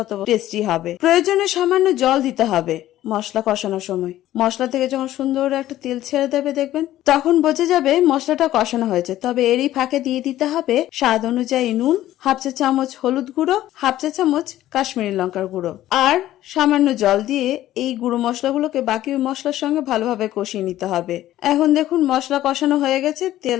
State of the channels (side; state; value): right; quieter; 13.9 dB